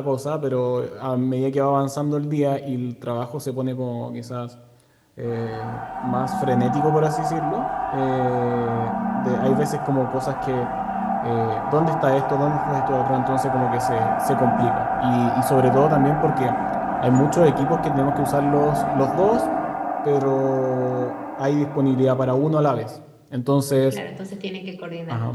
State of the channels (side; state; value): both; identical; correlation 1.00